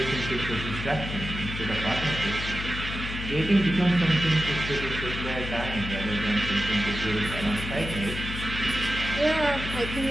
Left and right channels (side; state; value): left; noise; hum, 7 dB below the sound